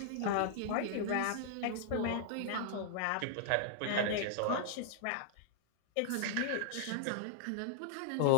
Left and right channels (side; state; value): both; different; correlation -0.01